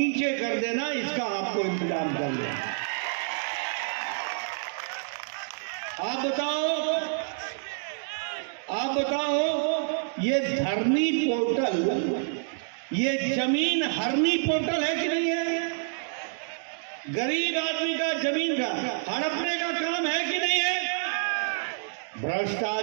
कर देना, इसका आपको इंतजाम कर लेना। आप बताओ, ये धरनी पोर्टल, ये जमीन हरनी पोर्टल है कि नहीं है? गरीब आदमी का जमीन का हड़पने का काम है कि नहीं है?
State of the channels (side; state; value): left; silent; digital silence